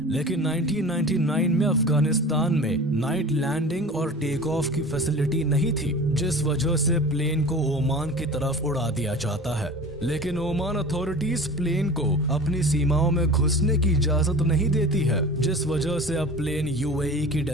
लेकिन 1999 में अफगानिस्तान में नाइट लैंडिंग और टेक ऑफ की फैसिलिटी नहीं थी, जिस वजह से प्लेन को ओमान की तरफ उड़ा दिया जाता है। लेकिन ओमान अथॉरिटीज प्लेन को अपनी सीमाओं में घुसने की इजाजत नहीं देती है, जिस वजह से अब प्लेन यूएई की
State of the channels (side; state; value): both; normal; correlation 0.37